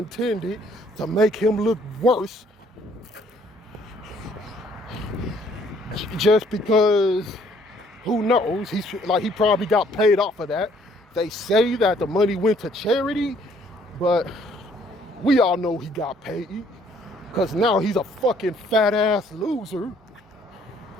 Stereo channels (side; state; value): both; normal; correlation 0.62